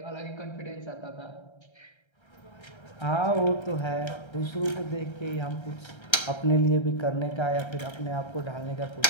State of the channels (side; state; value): right; late; 1.3 ms